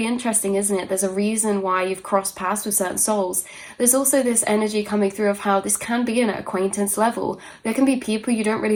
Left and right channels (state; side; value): identical; both; correlation 1.00